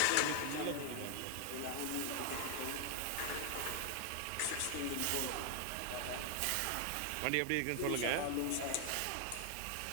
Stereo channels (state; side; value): different; both; correlation 0.00